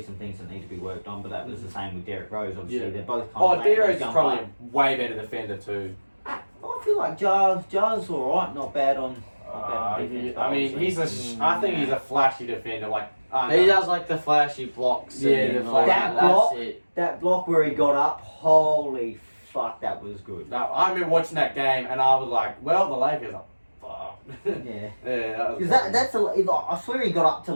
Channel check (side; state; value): both; inverted; correlation -1.00